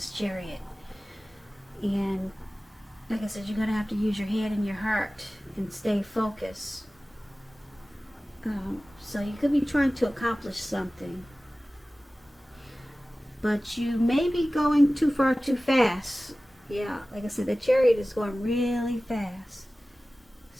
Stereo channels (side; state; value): both; normal; correlation 0.97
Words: Chariot. And like I said, you're going to have to use your head and your heart and stay focused. So you could be trying to accomplish something, but you may be going too far too fast. Yeah, like I said, the Chariot is going really fast.